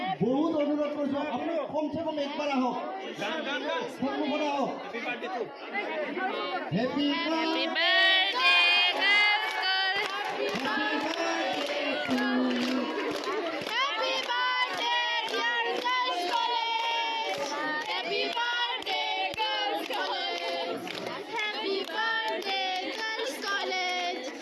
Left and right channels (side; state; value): both; identical; correlation 1.00